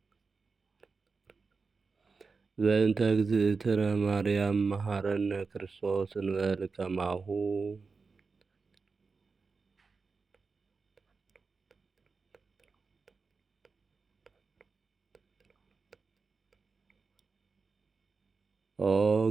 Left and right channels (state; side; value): quieter; left; 4.6 dB